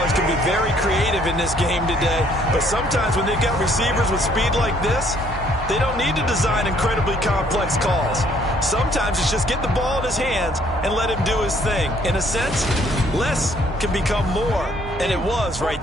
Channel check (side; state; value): right; noise; hum, 13 dB below the sound